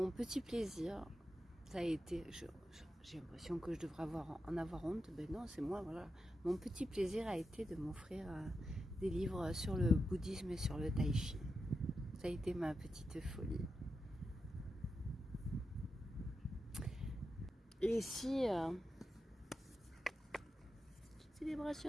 petit plaisir, ça a été, j'ai l'impression que je devrais en avoir honte, ben non, c'est moi, voilà. Mon petit plaisir a été de m'offrir des livres sur le bouddhisme et sur le tai chi. Ça a été ma petite folie. Et si...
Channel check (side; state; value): both; normal; correlation 0.88